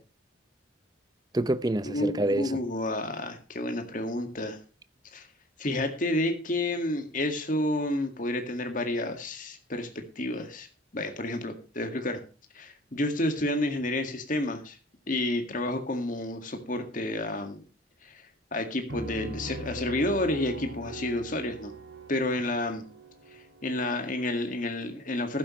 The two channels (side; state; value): both; normal; correlation 0.47